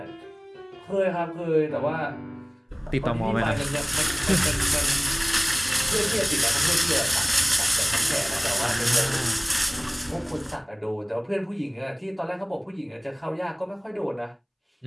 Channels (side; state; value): both; identical; correlation 1.00